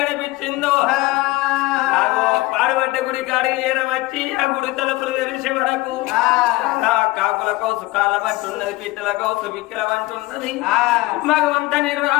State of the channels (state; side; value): quieter; right; 20.0 dB